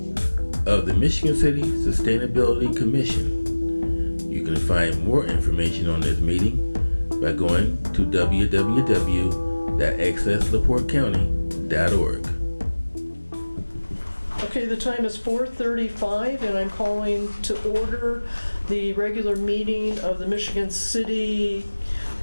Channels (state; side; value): inverted; both; correlation -1.00